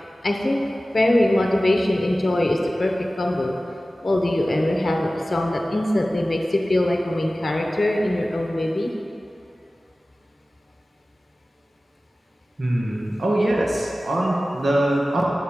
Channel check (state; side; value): normal; both; correlation 0.96